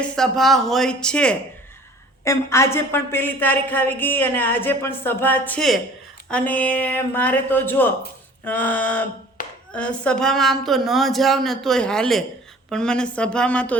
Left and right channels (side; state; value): both; normal; correlation 0.48